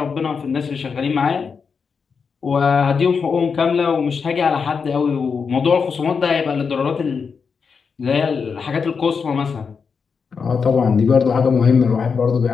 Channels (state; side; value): quieter; right; 5.7 dB